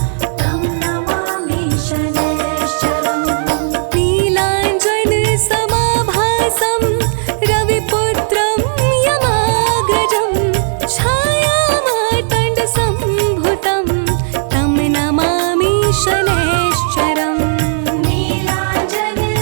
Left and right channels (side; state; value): left; silent; digital silence